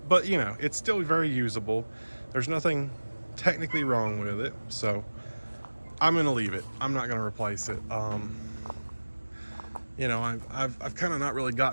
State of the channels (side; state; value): both; inverted; correlation -1.00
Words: it's still very usable. There's nothing technically wrong with it. So I'm going to leave it. I'm not going to replace it. I've kind of not really